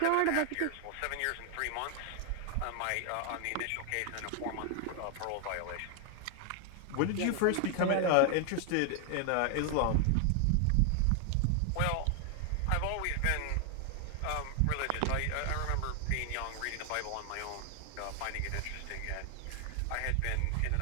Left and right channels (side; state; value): both; different; correlation 0.00